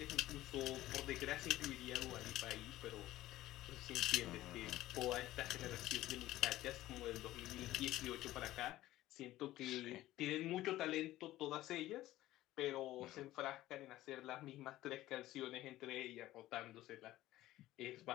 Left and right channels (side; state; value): right; quieter; 15.6 dB